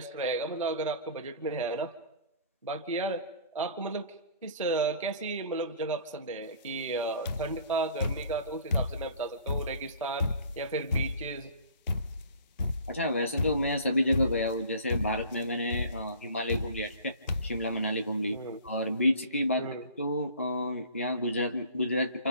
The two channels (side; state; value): both; inverted; correlation -0.47